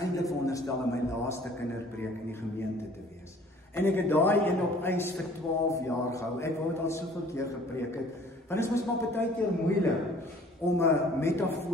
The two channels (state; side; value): normal; both; correlation 0.53